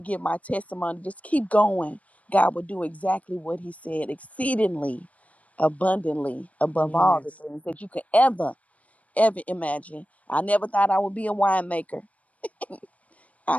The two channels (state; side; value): late; right; 0.068 ms